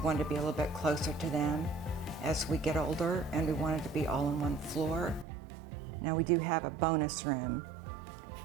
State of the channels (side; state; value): left; drops out; at 5.2 s